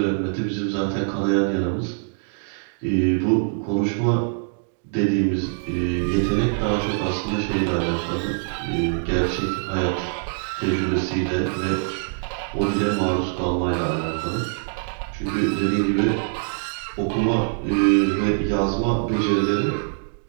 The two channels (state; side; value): silent; left; digital silence